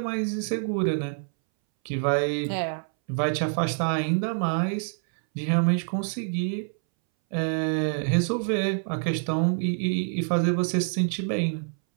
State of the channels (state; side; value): silent; left; 61 dB below the other